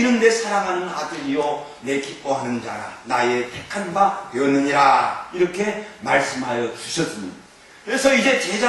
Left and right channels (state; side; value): identical; both; correlation 1.00